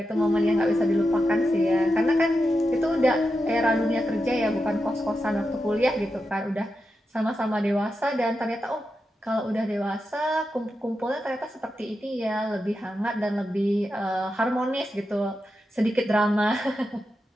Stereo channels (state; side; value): normal; both; correlation 0.88